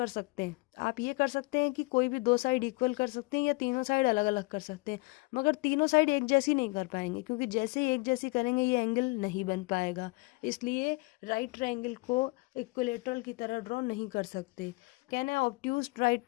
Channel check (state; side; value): quieter; right; 26.0 dB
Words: सकते हैं, आप ये कर सकते हैं कि कोई भी दो साइड इक्वल कर सकते हैं या तीनों साइड अलग अलग कर सकते हैं, मगर तीनों साइड एक जैसी नहीं कर पाएंगे, क्योंकि जैसे ही एक जैसी करेंगे ये एंगल नहीं बन पाएगा। इसलिए राइट ट्राइंगल को इक्विलेटरल की तरह ड्रॉ नहीं कर सकते। कैन है obtuse